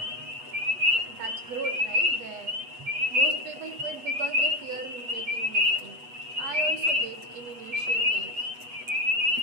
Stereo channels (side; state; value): left; late; 8.0 ms